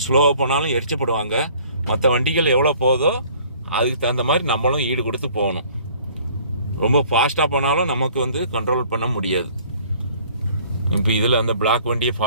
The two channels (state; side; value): inverted; both; correlation -0.54